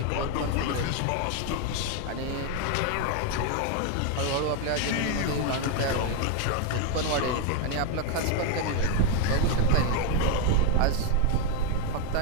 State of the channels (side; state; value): both; different; correlation 0.01